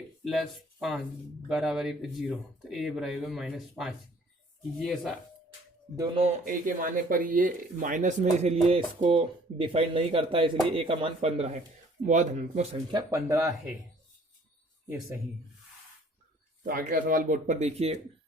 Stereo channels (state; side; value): normal; both; correlation 0.56